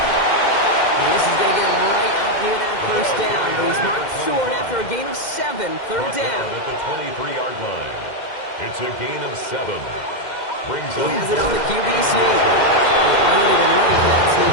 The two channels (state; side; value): late; right; 2.1 ms